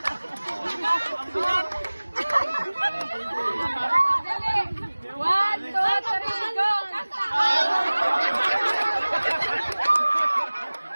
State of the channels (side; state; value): both; inverted; correlation -1.00